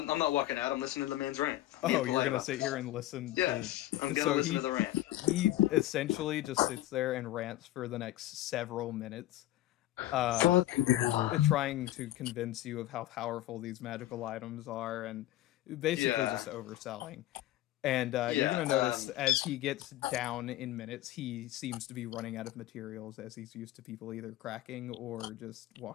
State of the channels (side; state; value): right; quieter; 15.0 dB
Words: not walking out. I'm listening to the man's rant. Oh, you're gonna sit here and listen Yes, I'm to... gonna listen to the rant. He essentially just sits there and rants for the next several minutes. Trying to convince you of how powerful these magical items are and basically just overselling. And you're going to notice as he gets down in minutes, he seems to be running out of materials as he's used to people either cracking or just